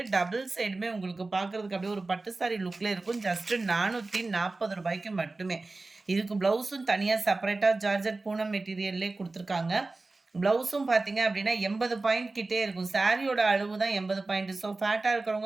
டபுள் சைடுமே உங்களுக்கு பார்க்குறதுக்கு அப்படியே ஒரு பட்டு சாரி லுக்ல இருக்கும். ஜஸ்ட் ரூ. 440 மட்டுமே. இதுக்கு ப்ளவுஸும் தனியா செப்பரேட்டா ஜார்ஜட் பூனம் மெட்டீரியல்லே குடுத்துருக்காங்க. ப்ளவுஸும் பார்த்தீங்க அப்படின்னா 80 பாயிண்ட் கிட்டே இருக்கும். சாரியோட அளவு தான் 80 பாயிண்ட். ஸோ ஃபேட்டா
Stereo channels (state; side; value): quieter; left; 3.4 dB